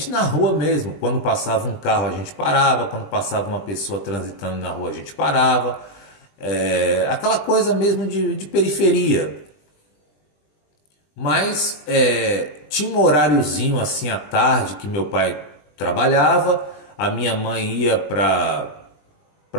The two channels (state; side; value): late; right; 20 ms